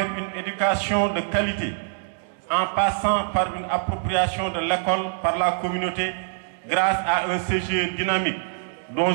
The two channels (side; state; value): left; silent; digital silence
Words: une éducation de qualité, en passant par une appropriation de l'école par la communauté grâce à un CGE dynamique, dont